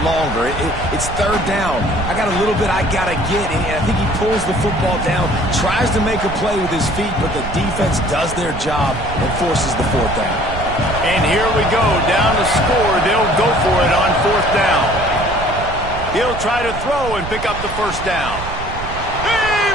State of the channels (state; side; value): noise; right; rumble, 9 dB below the sound